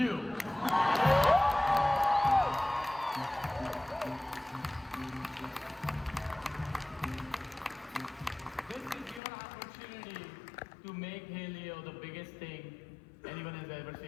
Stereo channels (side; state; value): right; drops out; at 9.2 s